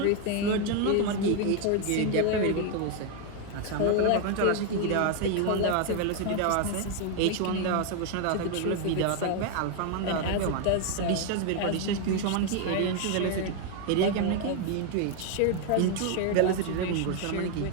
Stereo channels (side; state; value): both; different; correlation 0.01